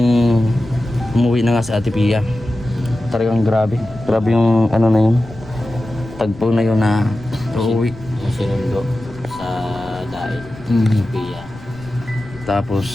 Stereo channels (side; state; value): left; noise; rumble, 18 dB below the sound